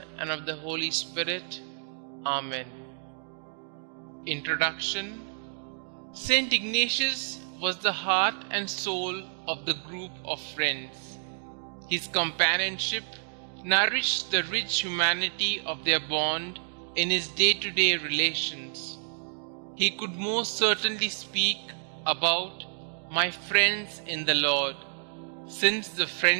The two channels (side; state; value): left; silent; digital silence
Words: and of the Holy Spirit. Amen. Introduction. St Ignatius was the heart and soul of the group of friends. His companionship nourished the rich humanity of their bond in his day-to-day relations. He could most certainly speak about "my friends in the Lord," since the